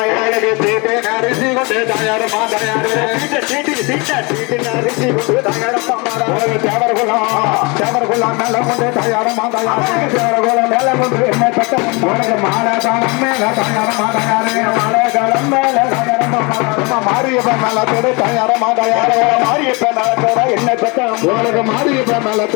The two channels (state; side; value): quieter; right; 28.5 dB